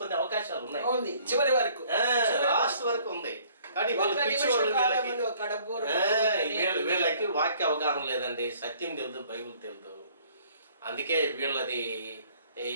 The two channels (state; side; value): inverted; both; correlation -0.58